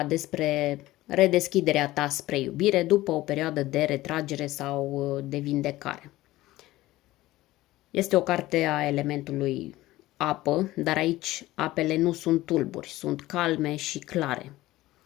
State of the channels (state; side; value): quieter; right; 17.1 dB